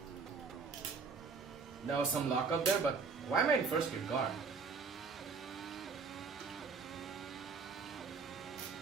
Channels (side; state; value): left; quieter; 4.9 dB